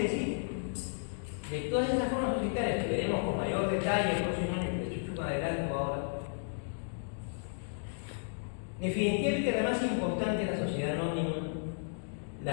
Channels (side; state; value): right; silent; digital silence